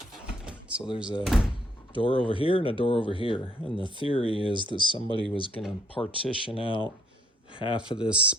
So there's a door over here and a door over here, and the theory is that somebody was going to partition out half of this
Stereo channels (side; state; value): both; normal; correlation 0.67